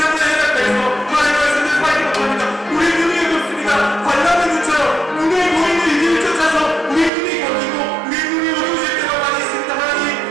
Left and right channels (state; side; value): drops out; left; at 7.1 s